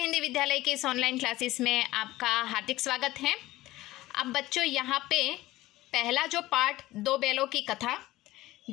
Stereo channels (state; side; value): quieter; right; 17.4 dB